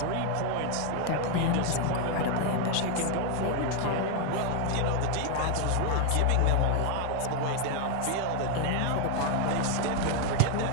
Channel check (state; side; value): different; both; correlation 0.01